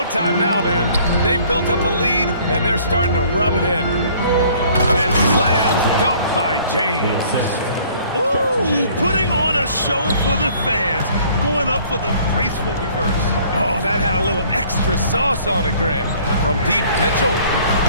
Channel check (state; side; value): inverted; both; correlation -0.56